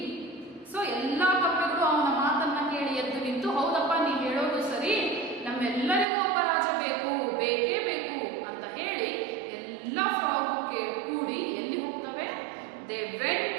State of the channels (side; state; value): left; drops out; at 6.1 s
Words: So ಎಲ್ಲಾ ಕಪ್ಪೆಗಳು ಅವನ ಮಾತನ್ನ ಕೇಳಿ ಎದ್ದು ನಿಂತು, ಹೌದಪ್ಪ ನೀ ಹೇಳೋದು ಸರಿ, ನಮ್ಮೆಲ್ಲರಿಗೂ ಒಬ್ಬ ರಾಜ ಬೇಕೇ ಬೇಕು ಅಂತ ಹೇಳಿ ಎಲ್ಲ ಫ್ರಾಗ್ ಕೂಡಿ ಎಲ್ಲಿ ಹೋಗ್ತವೆ? They